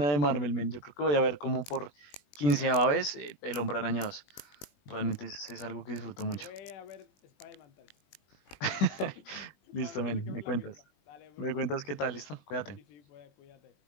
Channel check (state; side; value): late; right; 20 ms